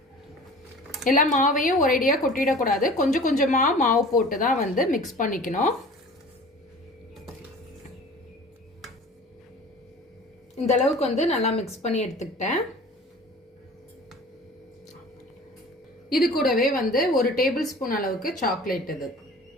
எல்லா மாவையும் ஒரேடியா கொட்டிடக்கூடாது. கொஞ்சம் கொஞ்சமா மாவு போட்டு தான் வந்து மிக்ஸ் பண்ணிக்கணும். இந்த அளவுக்கு வந்து நல்லா மிக்ஸ் பண்ணி எடுத்துக்கிட்டேன். இது கூடவே வந்து ஒரு டேபிள் ஸ்பூன் அளவுக்கு சாக்லேட்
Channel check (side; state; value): both; normal; correlation 0.42